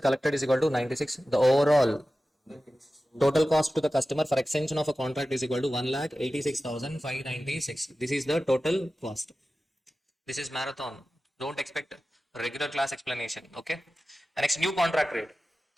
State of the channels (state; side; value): normal; both; correlation 0.95